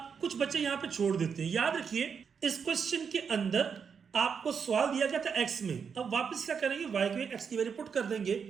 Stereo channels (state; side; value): quieter; left; 6.5 dB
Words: कुछ बच्चे यहाँ पे छोड़ देते हैं। याद रखिए इस क्वेश्चन के अंदर आपको सवाल दिया गया था x में, अब वापस क्या करेंगे y के x की वैल्यू पुट कर देंगे।